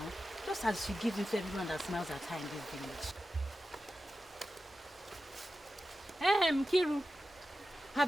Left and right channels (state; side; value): normal; both; correlation 0.93